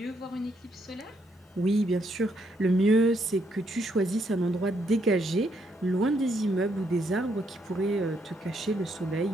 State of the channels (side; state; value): both; normal; correlation 0.74